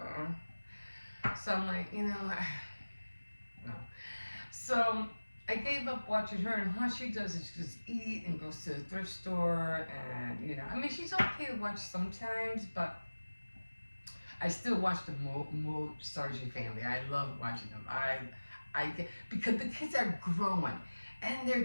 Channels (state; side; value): inverted; both; correlation -1.00